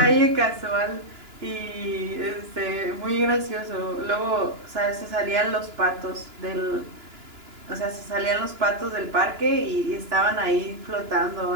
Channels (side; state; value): left; late; 2.9 ms